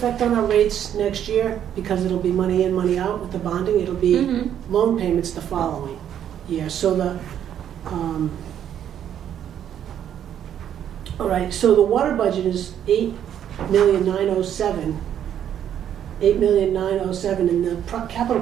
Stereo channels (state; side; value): quieter; left; 9.9 dB